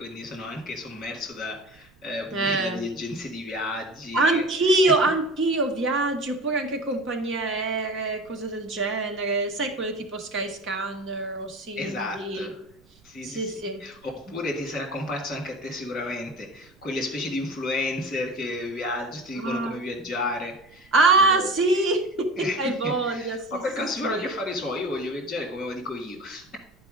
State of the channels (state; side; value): noise; right; rumble, 29 dB below the sound